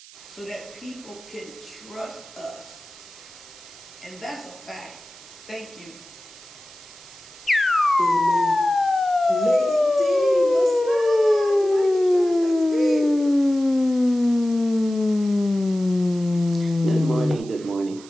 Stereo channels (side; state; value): right; noise; hiss, 21 dB below the sound